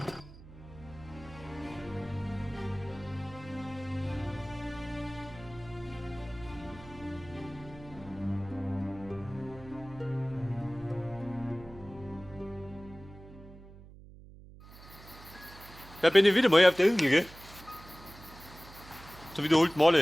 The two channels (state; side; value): noise; right; hum, 18 dB below the sound